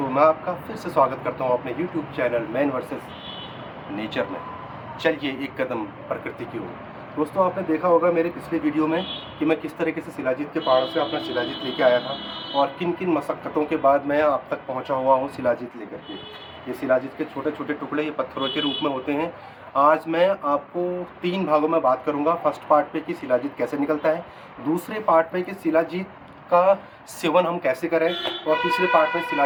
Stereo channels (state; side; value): identical; both; correlation 1.00